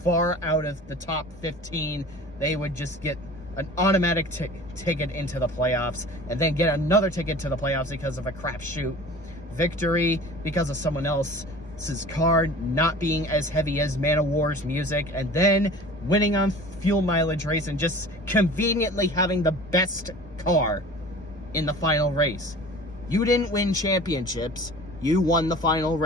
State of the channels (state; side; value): normal; both; correlation 0.42